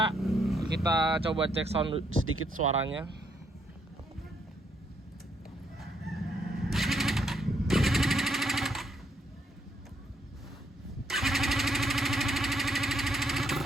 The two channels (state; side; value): normal; both; correlation 0.73